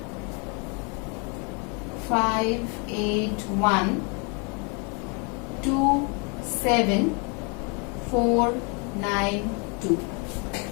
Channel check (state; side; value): quieter; right; 34.4 dB